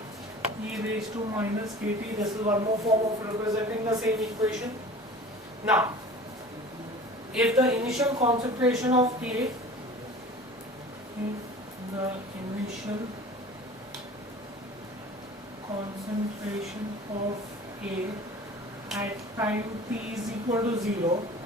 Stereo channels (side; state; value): both; normal; correlation 0.41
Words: E raised to minus KT. This is one more form of representing the same equation. Now, if the initial concentration of A, concentration of A at time t is equal to 0